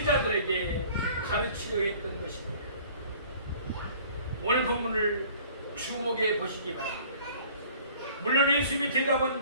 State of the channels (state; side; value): inverted; both; correlation -0.51